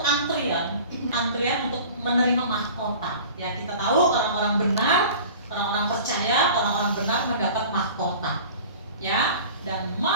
antrian untuk menerima mahkota. Ya, kita tahu orang-orang benar, orang-orang percaya, orang-orang benar mendapat mahkota. Ya, dan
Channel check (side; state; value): both; inverted; correlation -0.41